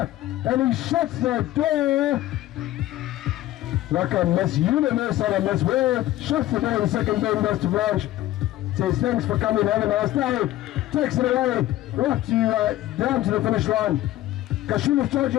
he shuts the door like a Miss Universe or a Miss World. Shuts the door in the second bend, goes to Blanche. Says thanks for coming, have a nice day. Takes it away, right to down to the finish line. Kashula's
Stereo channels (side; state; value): right; quieter; 15.0 dB